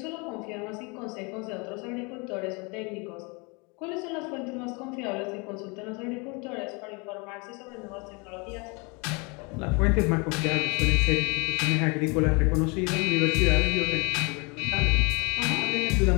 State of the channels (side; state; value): right; quieter; 29.8 dB